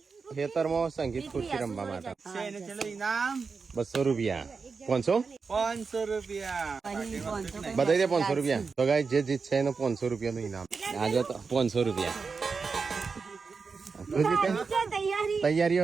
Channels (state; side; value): quieter; left; 5.0 dB